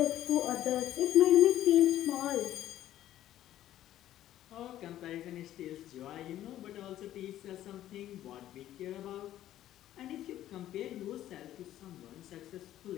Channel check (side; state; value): right; quieter; 12.8 dB